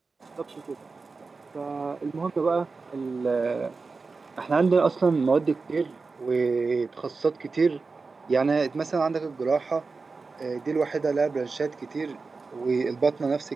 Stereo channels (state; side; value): quieter; left; 4.2 dB